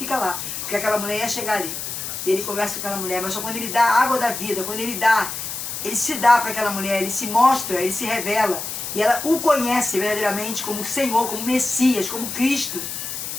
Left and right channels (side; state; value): left; noise; hiss, 6 dB below the sound